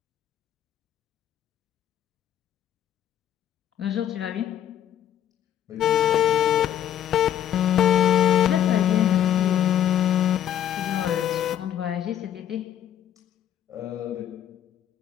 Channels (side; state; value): right; quieter; 10.5 dB